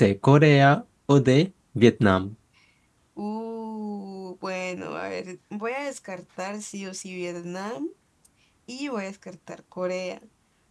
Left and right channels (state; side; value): identical; both; correlation 1.00